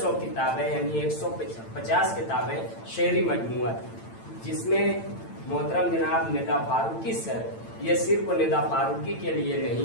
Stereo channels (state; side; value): late; right; 8.9 ms